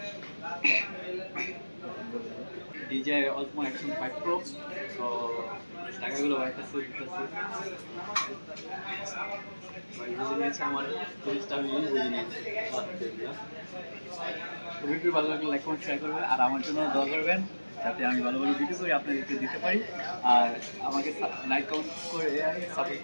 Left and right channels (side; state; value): both; inverted; correlation -1.00